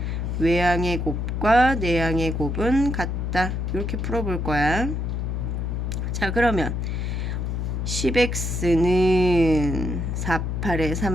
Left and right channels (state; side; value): noise; left; hum, 1 dB below the sound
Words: 외항의 곱과 내항의 곱은 같다. 이렇게 풀어볼 거야. 자, 그러면 10x는 4, 8에